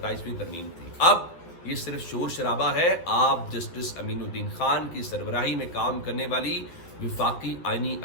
ترمیم تھی۔ اب یہ صرف شور شرابہ ہے۔ آپ جسٹس امین الدین خان کی سربراہی میں کام کرنے والی وفاقی آئینی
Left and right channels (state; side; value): late; right; 12 ms